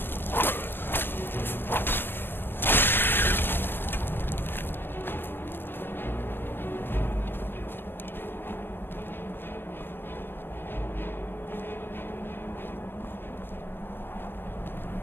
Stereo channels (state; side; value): late; right; 0.098 ms